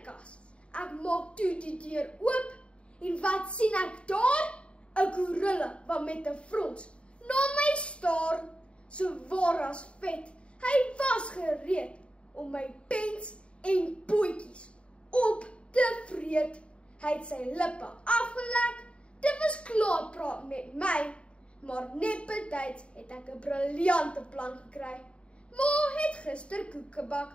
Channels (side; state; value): right; late; 0.058 ms